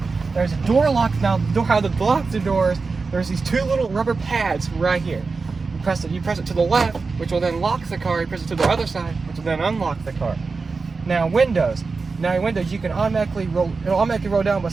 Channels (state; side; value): quieter; left; 4.3 dB